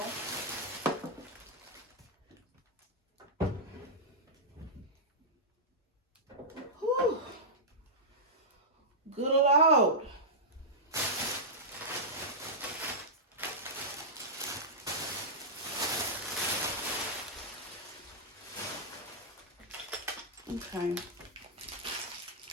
Whew. Good Lord. Okay.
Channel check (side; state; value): both; normal; correlation -0.10